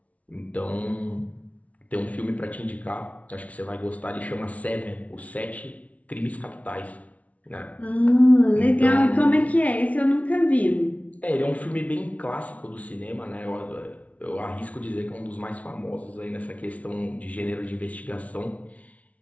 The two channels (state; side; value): late; right; 0.068 ms